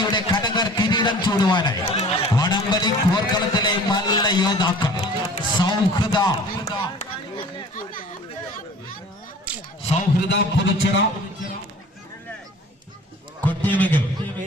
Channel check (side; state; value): both; normal; correlation 0.46